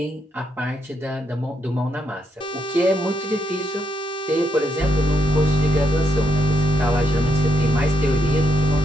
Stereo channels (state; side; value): normal; both; correlation 0.78